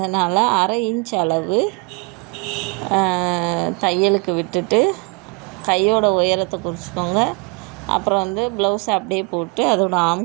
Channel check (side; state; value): left; quieter; 30.7 dB